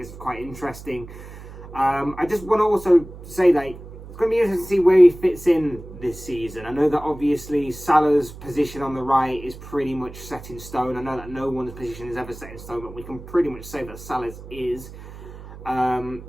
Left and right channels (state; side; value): noise; right; hum, 15 dB below the sound